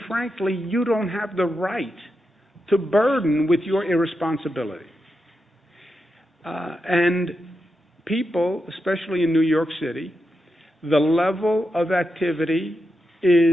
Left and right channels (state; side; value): normal; both; correlation 0.87